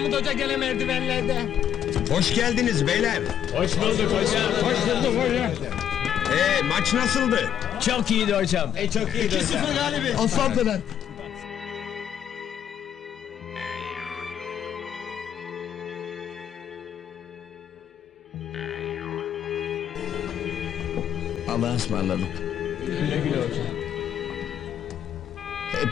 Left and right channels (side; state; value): right; quieter; 9.6 dB